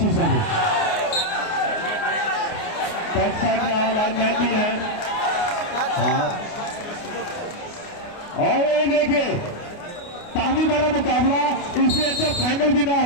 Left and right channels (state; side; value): late; right; 29 ms